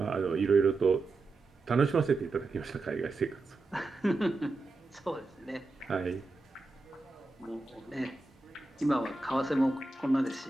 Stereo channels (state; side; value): quieter; left; 3.3 dB